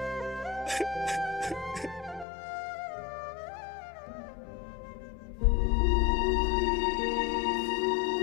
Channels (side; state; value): right; drops out; at 2.2 s